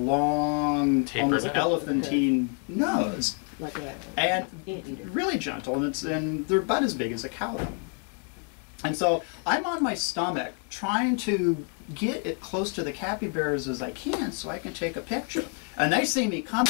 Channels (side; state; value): right; quieter; 39.8 dB